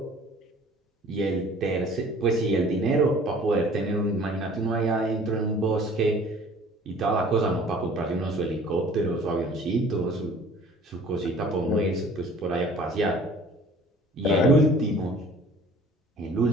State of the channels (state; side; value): normal; both; correlation 0.50